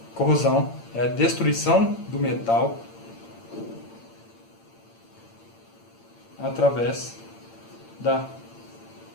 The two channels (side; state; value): right; late; 8.8 ms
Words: Corrosão é a destruição do metal através da